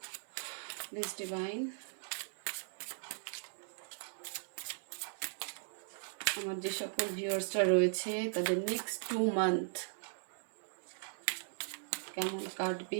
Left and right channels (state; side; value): silent; left; digital silence